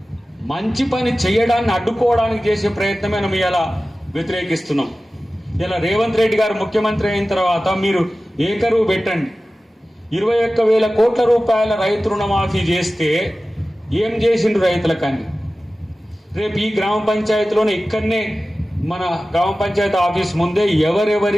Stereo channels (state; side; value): normal; both; correlation 0.96